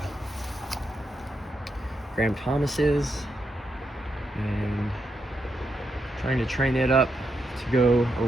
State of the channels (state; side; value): normal; both; correlation 0.83